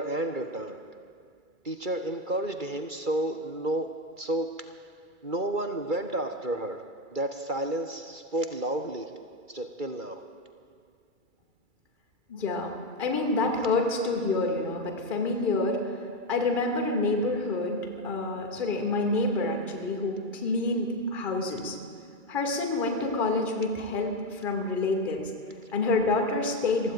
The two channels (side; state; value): left; late; 2.3 ms